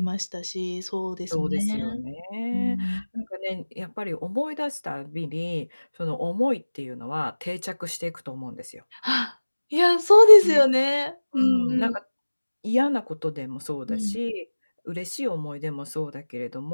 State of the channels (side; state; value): both; inverted; correlation -1.00